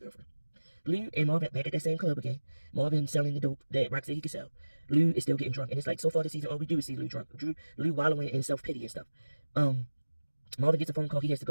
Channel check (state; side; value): inverted; both; correlation -1.00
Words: Lou and Marvin back at that same club again. Marvin selling the dope that Rock said he could sell. Lou is still getting drunk. And it's like, so far this season, all we do is see Lou drunk. Lou wallowing in self-pity and stuff. Marvin gets a phone call. He has to